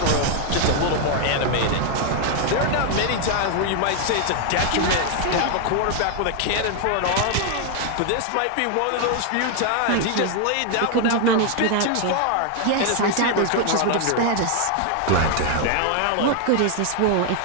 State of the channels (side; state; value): both; different; correlation 0.00